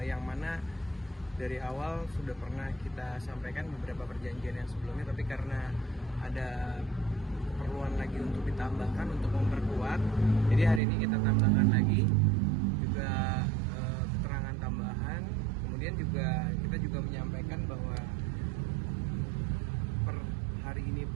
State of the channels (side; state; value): left; drops out; at 10.8 s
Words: mana dari awal sudah pernah kita sampaikan beberapa perjanjian yang sebelumnya, tapi karena ada keperluan lagi untuk ditambahkan untuk memperkuat, jadi hari ini kita tambahkan lagi juga keterangan tambahan. Kemudian juga kita juga menyampaikan bahwa per hari ini